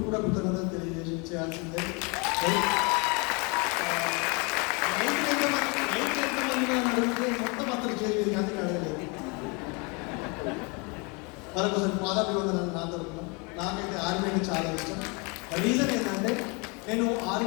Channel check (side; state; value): right; quieter; 30.8 dB